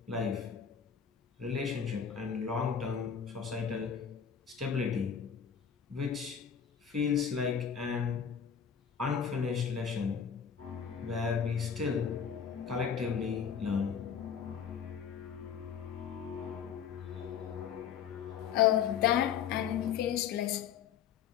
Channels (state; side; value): quieter; right; 7.5 dB